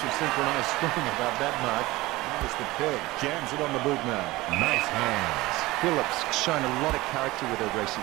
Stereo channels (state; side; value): quieter; left; 19.6 dB